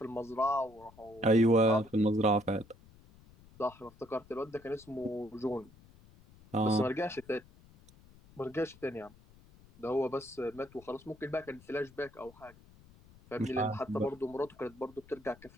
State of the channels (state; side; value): noise; left; rumble, 24 dB below the sound